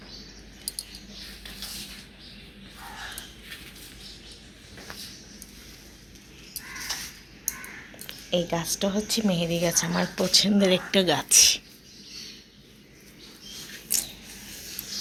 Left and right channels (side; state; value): both; identical; correlation 1.00